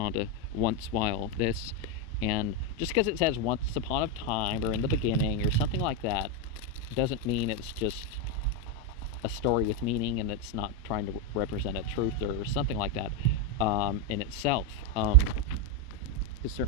to once while this. And just because it says once upon a time or in the beginning or something like that doesn't mean it's just a story with meaning and it's not trying to represent a truth or something like that in itself. Because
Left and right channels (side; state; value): both; normal; correlation 0.05